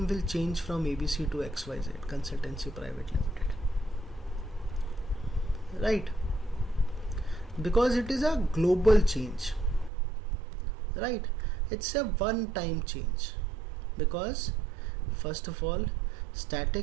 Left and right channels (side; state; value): left; drops out; at 9.9 s